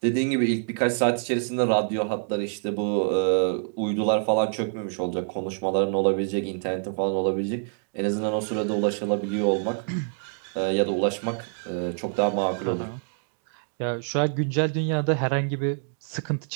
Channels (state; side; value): silent; left; digital silence